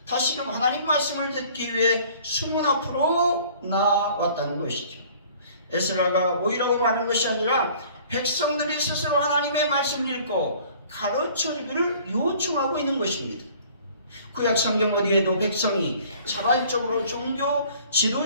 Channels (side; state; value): both; inverted; correlation -0.52